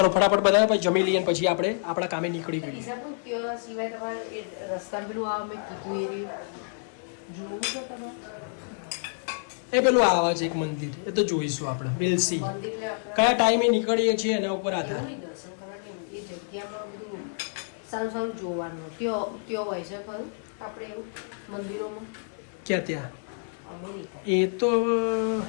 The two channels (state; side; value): silent; right; digital silence